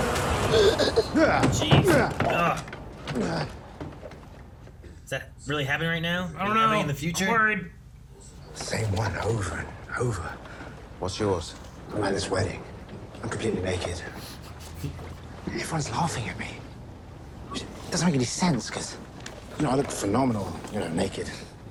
jeez. Ugh. Is that really happening right now? I don't know. Happening in the future? I'm worried. Same one over and over. What's yours? I'm at this wedding. I'm completely naked. Everyone's laughing at me. It doesn't make any sense, because, I look phenomenal, naked.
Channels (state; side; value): identical; both; correlation 1.00